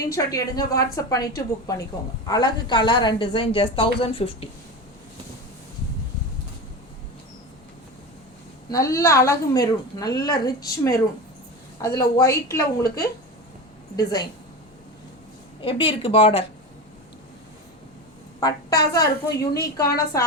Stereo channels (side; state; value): both; normal; correlation 0.24